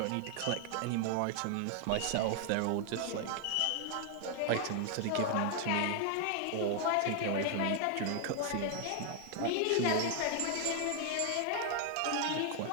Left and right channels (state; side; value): different; both; correlation 0.00